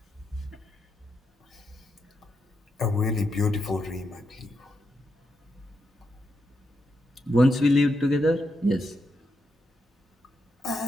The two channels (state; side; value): normal; both; correlation 0.83